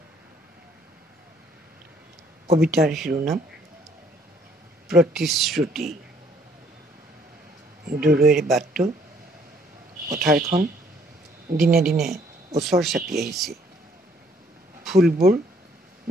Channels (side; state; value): both; normal; correlation 0.63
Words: কবিতাৰ শিৰোনাম প্ৰতিশ্ৰুতি। দূৰৈৰ বাটটো, পথাৰখন দিনে দিনে ওচৰ চাপি আহিছে। ফুলবোৰ